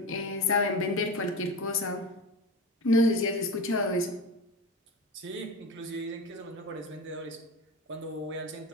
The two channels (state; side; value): normal; both; correlation 0.26